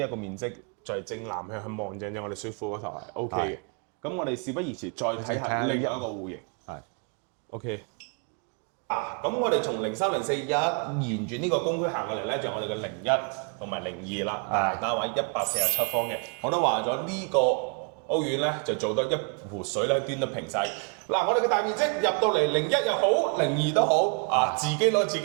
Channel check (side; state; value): left; quieter; 39.7 dB